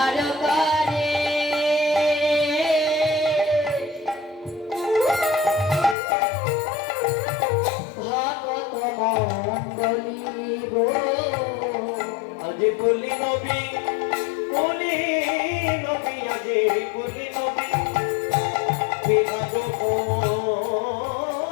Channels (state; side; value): drops out; right; at 6.0 s